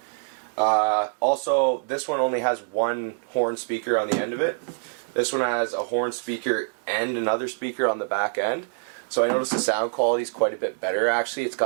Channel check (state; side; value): silent; left; digital silence